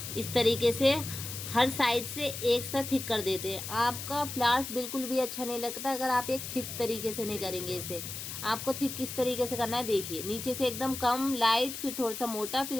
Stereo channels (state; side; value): noise; left; hiss, 7 dB below the sound